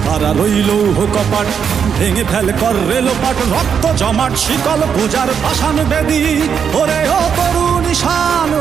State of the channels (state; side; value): quieter; left; 7.2 dB